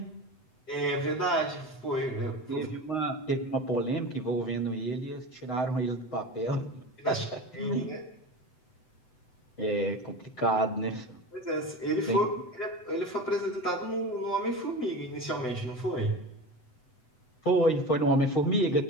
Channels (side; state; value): right; late; 7.9 ms